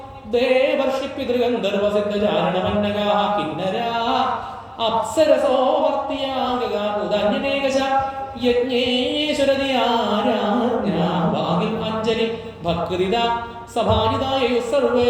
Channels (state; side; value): identical; both; correlation 1.00